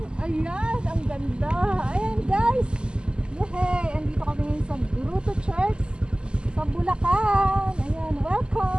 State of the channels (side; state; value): left; late; 0.049 ms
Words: Ayan, ang ganda. Ayan guys. Yehey, andito kami ngayon sa Grotto Church sa Bulacan. Ayan,